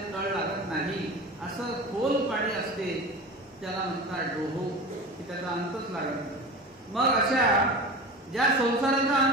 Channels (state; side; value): normal; both; correlation 0.31